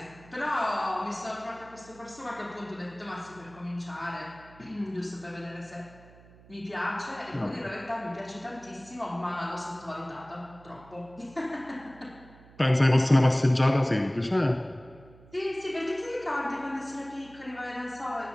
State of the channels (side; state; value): right; noise; hum, 23 dB below the sound